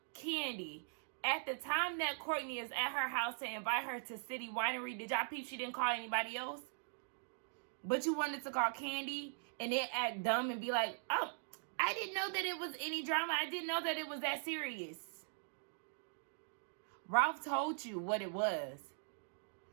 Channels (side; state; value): left; silent; digital silence